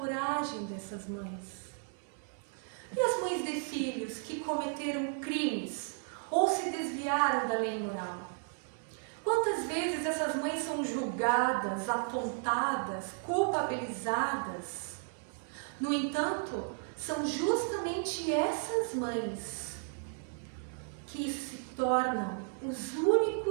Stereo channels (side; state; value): left; silent; 55 dB below the other